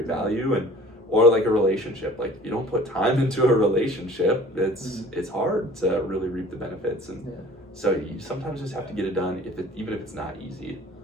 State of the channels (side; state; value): both; normal; correlation 0.48